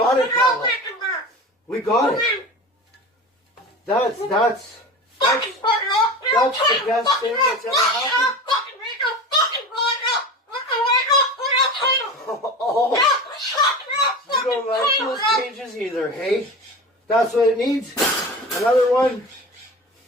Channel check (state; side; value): normal; both; correlation 0.32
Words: it, Pebble. We got it. That's the best thing that's ever happened. Oh, you don't like those cages either, hey? That's what it needs. Another one.